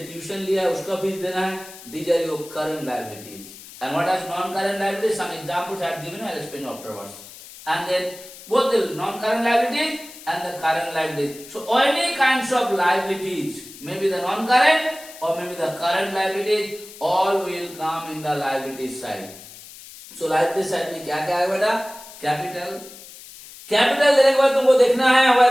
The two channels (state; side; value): noise; left; hiss, 17 dB below the sound